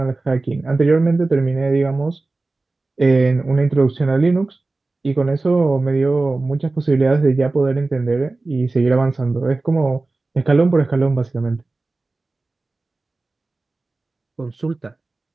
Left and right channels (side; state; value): left; quieter; 3.4 dB